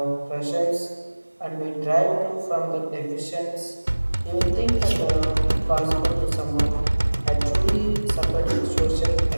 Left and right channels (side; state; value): both; inverted; correlation -1.00